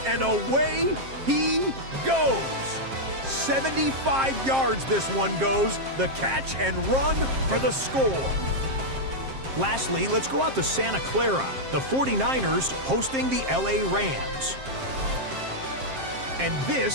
and away he goes. 75 yards this one goes. The catch and run for the score. Lastly, let's go out to Santa Clara. The 49ers hosting the LA Rams. And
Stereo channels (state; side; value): late; left; 7.5 ms